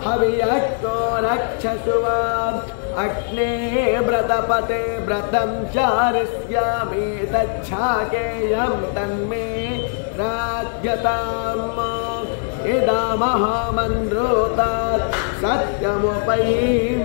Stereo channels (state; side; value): silent; right; 65 dB below the other